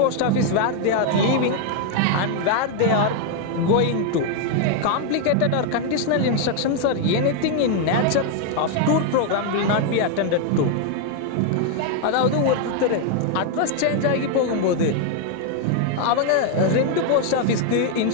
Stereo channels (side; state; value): both; different; correlation 0.00